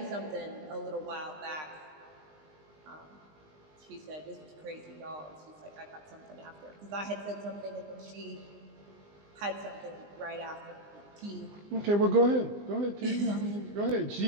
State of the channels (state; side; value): late; left; 20 ms